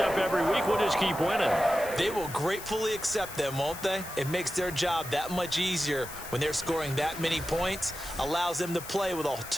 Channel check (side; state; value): left; noise; hiss, 12 dB below the sound